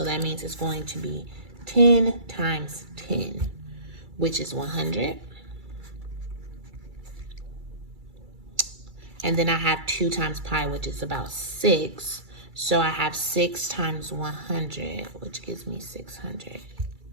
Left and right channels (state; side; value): late; left; 2.3 ms